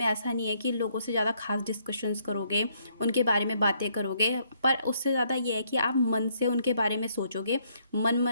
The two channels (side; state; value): both; inverted; correlation -0.70